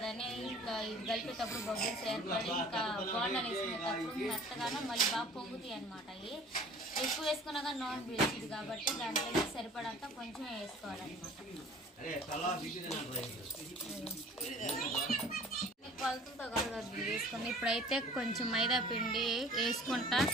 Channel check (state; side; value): normal; both; correlation 0.48